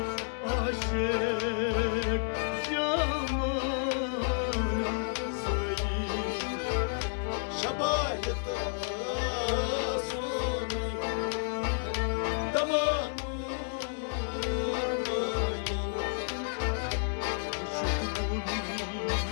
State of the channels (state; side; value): silent; right; 57 dB below the other